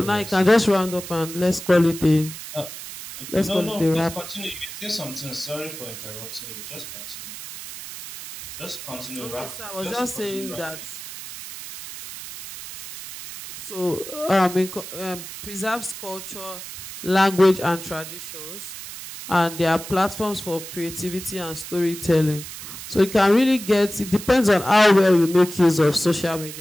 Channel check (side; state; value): right; noise; hiss, 11 dB below the sound